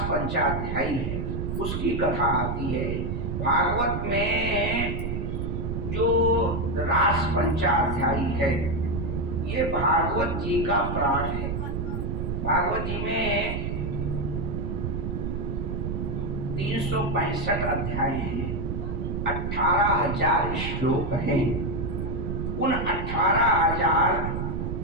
पंचाध्यायी है उसकी कथा आती है। भागवत में जो रास पंचाध्यायी है ये भागवत जी का प्राण है। भागवत जी में 365 अध्याय हैं, 18,000 श्लोक हैं। उन 18,000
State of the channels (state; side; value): noise; right; rumble, 2 dB below the sound